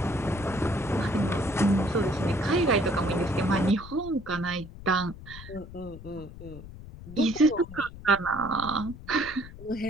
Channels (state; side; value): noise; left; rumble, 15 dB below the sound